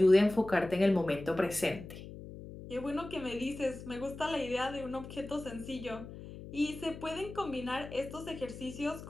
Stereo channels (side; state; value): left; noise; hum, 13 dB below the sound